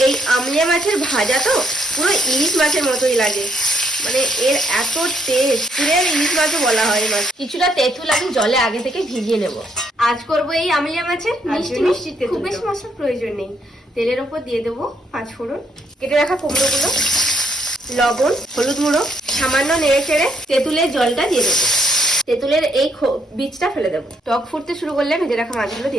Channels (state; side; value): normal; both; correlation 0.73